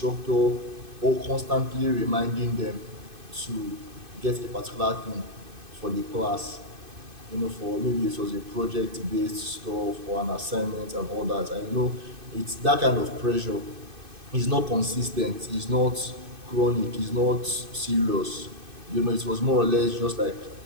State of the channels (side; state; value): left; late; 2.5 ms